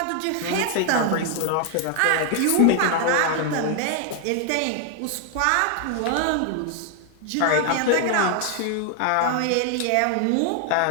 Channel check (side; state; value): both; different; correlation 0.00